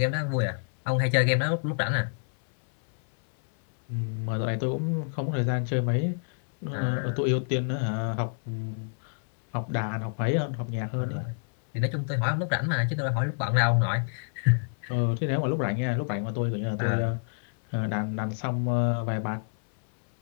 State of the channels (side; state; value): right; silent; 60 dB below the other